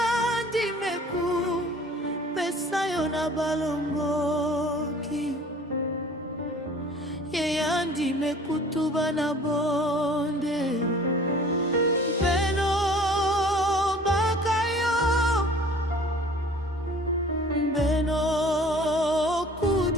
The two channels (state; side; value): normal; both; correlation 0.49